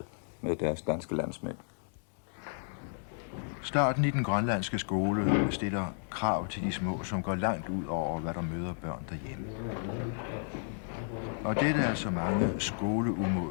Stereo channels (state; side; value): silent; right; digital silence